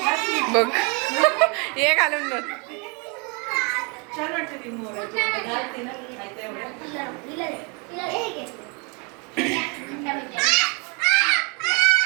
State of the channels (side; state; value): left; quieter; 32.6 dB